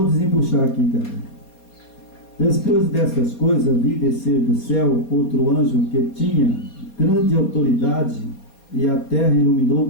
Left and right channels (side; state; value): right; late; 4.3 ms